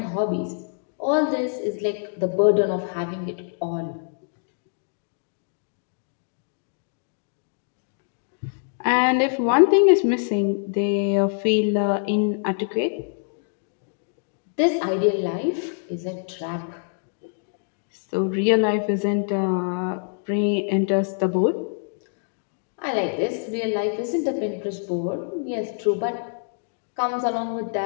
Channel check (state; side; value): silent; right; digital silence